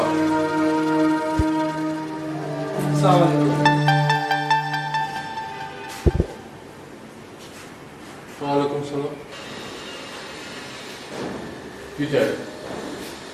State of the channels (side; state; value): both; identical; correlation 1.00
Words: আসসালামু আলাইকুম। ওয়ালাইকুম সালাম। কি চাই?